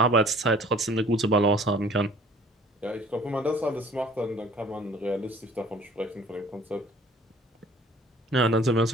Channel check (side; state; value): both; normal; correlation 0.52